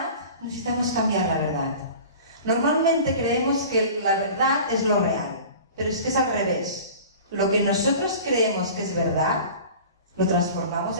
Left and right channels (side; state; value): both; inverted; correlation -0.40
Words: necesitamos cambiar la verdad. Normalmente creemos que la verdad es lo real, pero es que es al revés. Lo que nosotros creemos que es verdad, lo transformamos